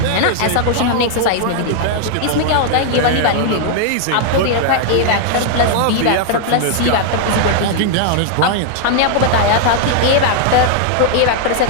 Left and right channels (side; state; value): both; different; correlation 0.00